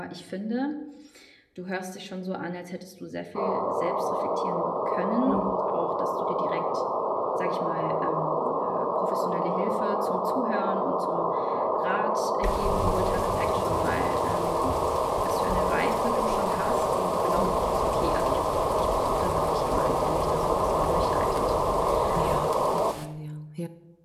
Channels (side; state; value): both; identical; correlation 1.00